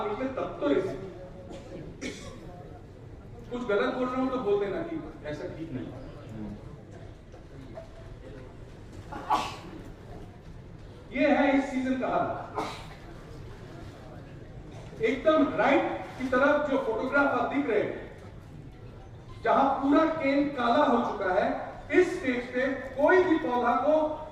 लीजिए तब तो रेसिड्यू। कुछ गलत बोल रहा हूं तो बोल देना कि ऐसा ठीक नहीं। ये है इस सीजन का हाल। एकदम राइट की तरफ जो फोटोग्राफ आप दिख रहे हैं, जहां पूरा केन काला हो चुका है, इस स्टेज पे कोई भी पौधा को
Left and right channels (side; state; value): both; identical; correlation 1.00